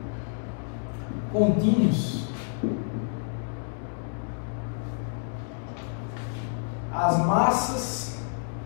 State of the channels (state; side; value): silent; right; digital silence